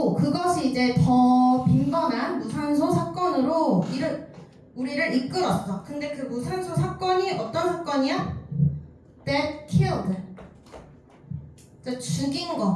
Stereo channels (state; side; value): identical; both; correlation 1.00